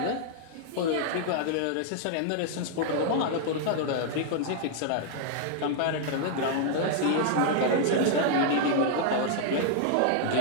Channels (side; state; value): both; different; correlation 0.00